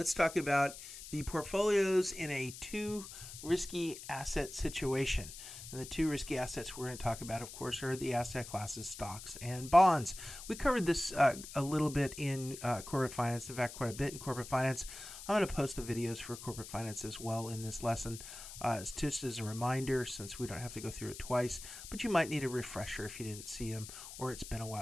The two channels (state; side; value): noise; left; hiss, 12 dB below the sound